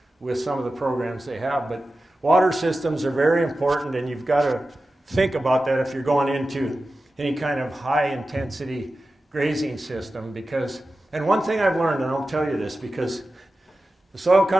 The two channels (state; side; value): normal; both; correlation 0.94